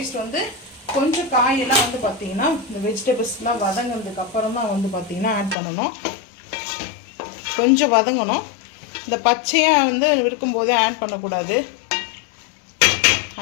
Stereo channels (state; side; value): drops out; right; at 5.6 s